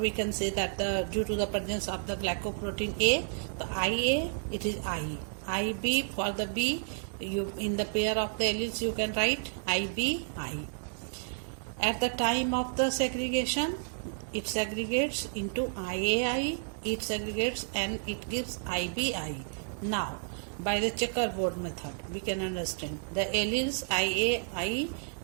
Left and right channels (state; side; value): silent; left; digital silence